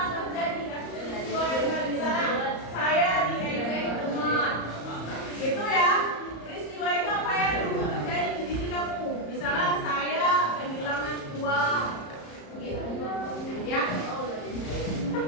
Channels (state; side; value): late; right; 34 ms